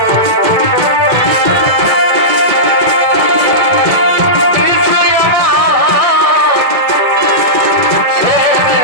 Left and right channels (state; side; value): late; left; 1.7 ms